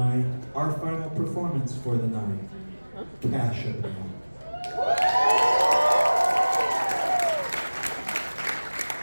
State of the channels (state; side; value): inverted; both; correlation -1.00